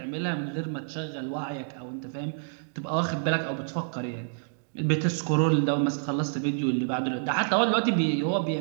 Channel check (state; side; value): silent; left; digital silence